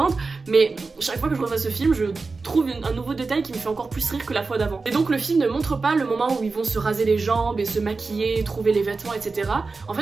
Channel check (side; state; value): left; quieter; 4.1 dB